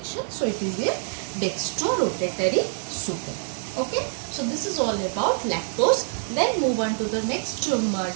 So it is a dextrorotatory sugar. Okay, so this is all about lactose. Then move on to the next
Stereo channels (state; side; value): silent; left; 55 dB below the other